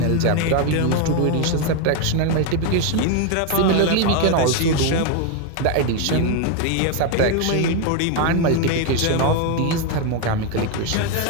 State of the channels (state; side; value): different; both; correlation 0.01